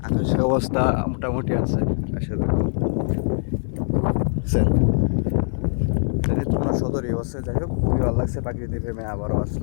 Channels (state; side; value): silent; right; digital silence